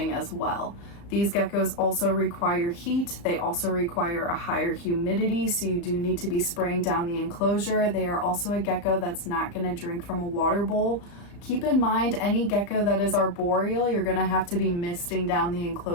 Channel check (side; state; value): right; late; 35 ms